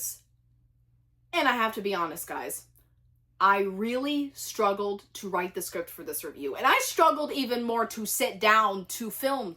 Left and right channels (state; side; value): identical; both; correlation 1.00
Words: and I have to be honest, guys. I really struggled to write the script for this review, and I struggled even more to sit down to film